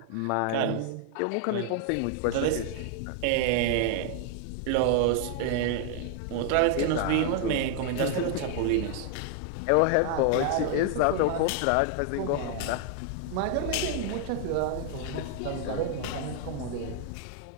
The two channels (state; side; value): different; both; correlation 0.00